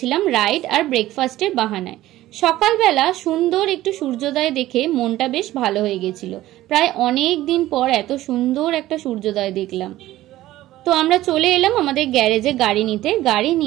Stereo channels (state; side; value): quieter; left; 15.3 dB